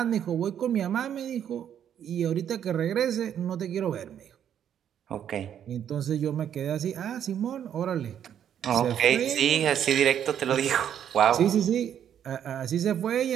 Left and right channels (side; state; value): left; quieter; 9.4 dB